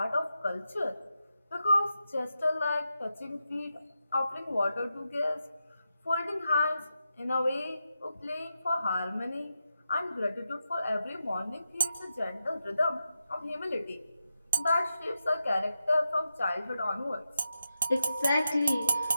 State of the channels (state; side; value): inverted; both; correlation -0.88